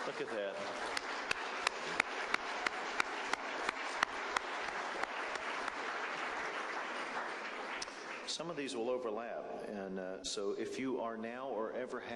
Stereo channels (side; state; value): both; identical; correlation 1.00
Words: Look at that. Some of these will overlap, and so if you are now or ever